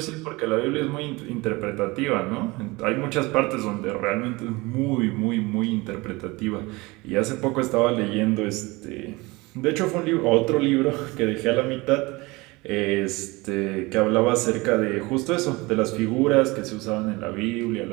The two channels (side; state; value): left; quieter; 23.2 dB